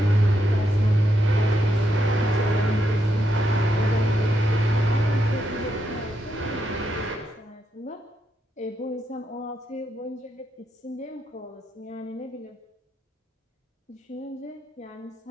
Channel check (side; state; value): both; normal; correlation 0.81